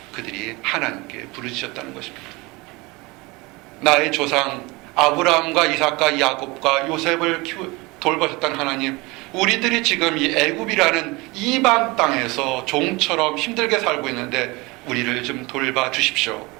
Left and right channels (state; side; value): quieter; left; 24.3 dB